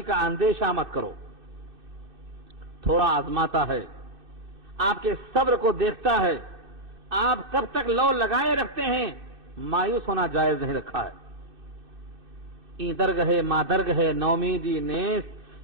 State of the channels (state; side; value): late; left; 2.6 ms